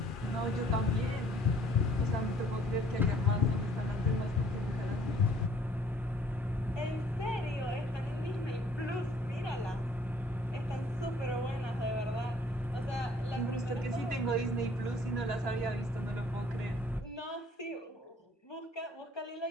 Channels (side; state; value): both; normal; correlation 0.58